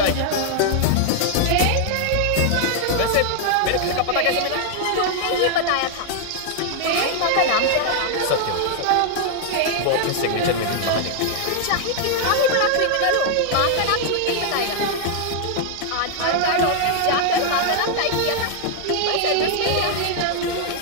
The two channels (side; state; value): both; different; correlation 0.00